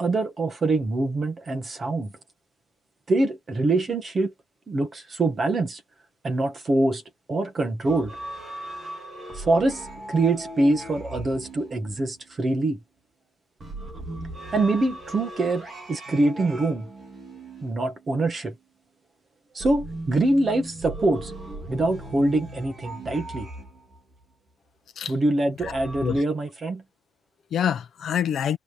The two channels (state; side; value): normal; both; correlation 0.84